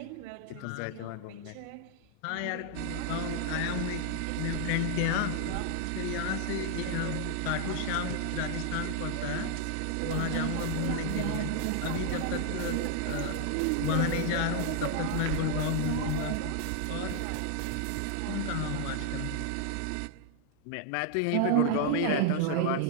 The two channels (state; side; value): different; both; correlation 0.00